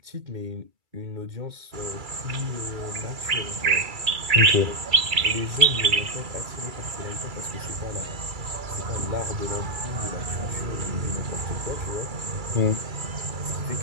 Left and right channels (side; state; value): left; late; 2.3 ms